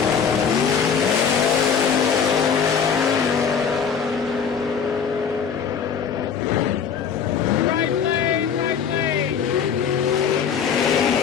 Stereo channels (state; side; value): quieter; right; 7.0 dB